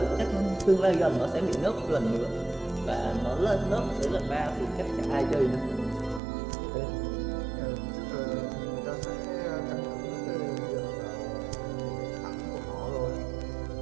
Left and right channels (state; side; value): drops out; left; at 6.2 s